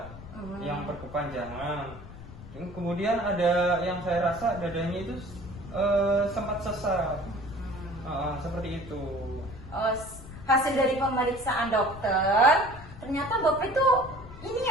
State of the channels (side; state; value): left; noise; rumble, 15 dB below the sound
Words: Yang berkepanjangan. Kemudian ada yang saya rasa dadanya itu sempat sesak. Seperti itu. Oh, hasil dari pemeriksaan dokter, ternyata Bapak itu ini